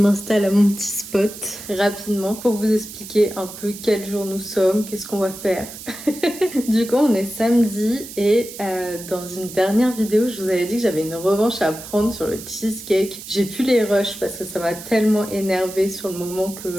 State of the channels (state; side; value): noise; right; hiss, 13 dB below the sound